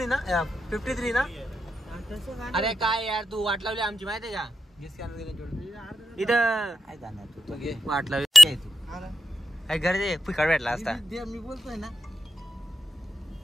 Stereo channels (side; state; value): both; normal; correlation 0.89